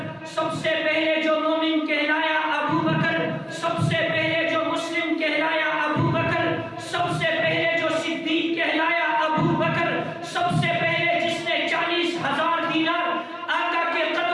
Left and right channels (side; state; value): both; identical; correlation 1.00